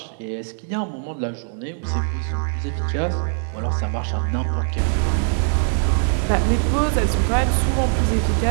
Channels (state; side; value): silent; left; 65 dB below the other